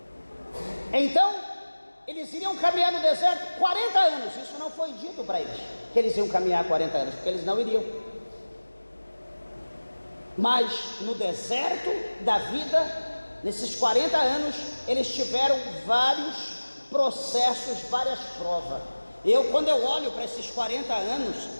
Então eles iriam caminhar no deserto 40 anos, isso não foi dito para eles, que eles iam caminhar 40 anos, porque eles não iriam. Mas no deserto da vida, nesses 40 anos, eles tiveram vários processos, várias provas. Quando eu olho para esses 40 anos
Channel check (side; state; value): both; inverted; correlation -1.00